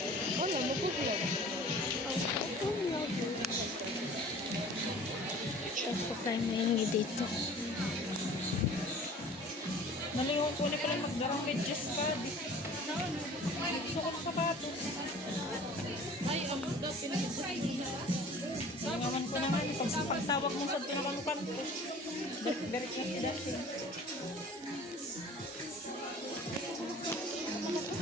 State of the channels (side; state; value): both; normal; correlation 0.46